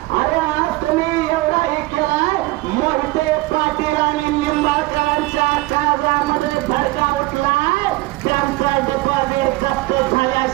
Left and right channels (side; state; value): left; quieter; 19.9 dB